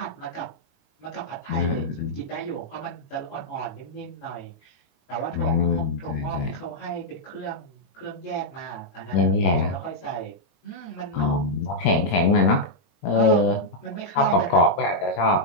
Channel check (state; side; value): late; right; 22 ms